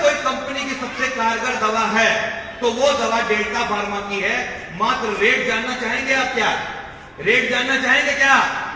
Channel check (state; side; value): identical; both; correlation 1.00